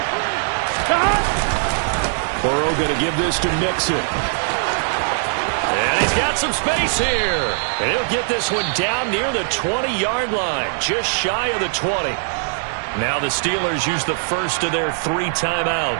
Burrow going to give this to Mixon. And he's got some space here. And he'll get this one down near the 20-yard line, just shy of the 20. Now the Steelers use the first of their 3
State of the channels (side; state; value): left; silent; 65 dB below the other